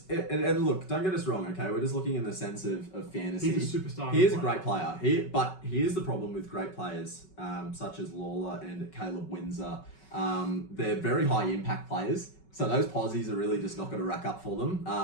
and look, don't get us wrong, okay? We're just looking in the sense of fantasy. He's a superstar. He is a great player. But here's the problem with great players, such as Lawler and Caleb Windsor. They're very high impact players. So those posies are really just not going to rack up for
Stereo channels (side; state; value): right; late; 5.3 ms